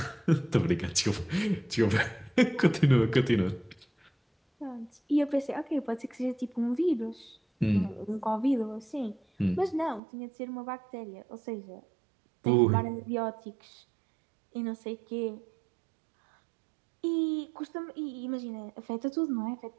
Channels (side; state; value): left; drops out; at 10.0 s